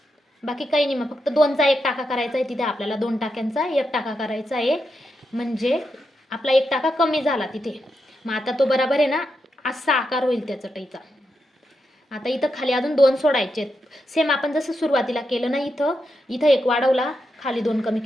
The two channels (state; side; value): normal; both; correlation 0.85